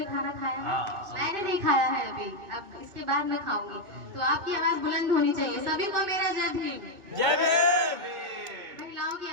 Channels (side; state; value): left; late; 2.0 ms